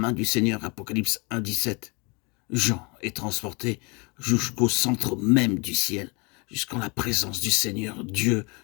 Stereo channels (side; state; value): right; quieter; 29.9 dB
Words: du Seigneur, Apocalypse 1,17, Jean est transporté jusqu'au centre même du ciel, jusqu'en la présence du Seigneur, Dieu